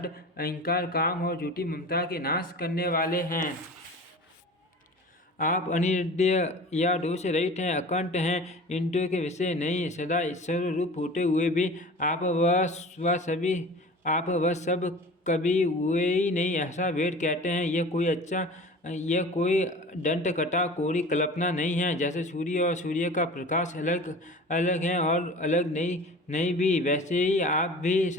अहंकार, काम और झूठी ममता के नाश करने वाले हैं। आप अनिर्देय या दोष रहित हैं, अकंठ हैं, इंद्रियों के विषय नहीं, सदा ईश्वर रूप होते हुए भी आप वह सब कभी हुए ही नहीं, ऐसा वेद कहते हैं। यह कोई दंत कथा कोरी कल्पना नहीं है। जैसे सूर्य और सूर्य का प्रकाश अलग है और अलग नहीं भी, वैसे ही आप भी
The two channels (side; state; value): both; normal; correlation 0.39